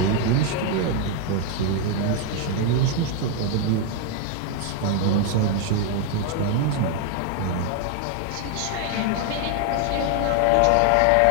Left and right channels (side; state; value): both; different; correlation 0.00